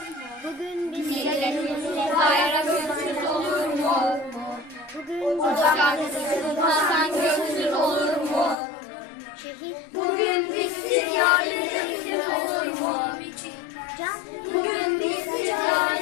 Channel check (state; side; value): drops out; right; at 8.6 s